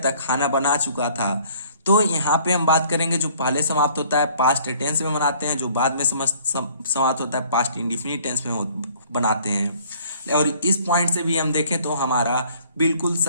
खाना बना चुका था। तो यहाँ पे हम बात करेंगे जो पहले समाप्त होता है पास्ट टेंस में बनाते हैं, जो बाद में समाप्त होता है पास्ट इंडिफिनिट टेंस में बनाते हैं। और इस पॉइंट से भी हम देखें तो हमारा बिल्कुल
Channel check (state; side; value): inverted; both; correlation -0.57